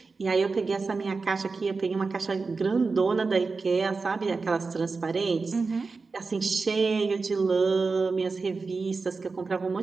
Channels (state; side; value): quieter; left; 4.3 dB